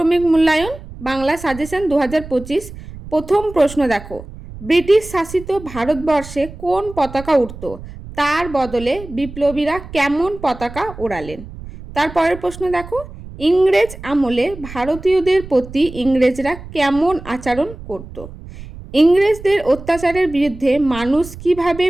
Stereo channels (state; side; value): noise; right; rumble, 15 dB below the sound